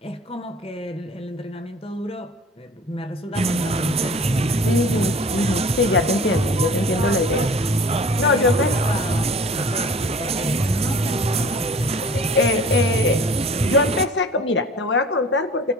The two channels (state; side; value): normal; both; correlation 0.45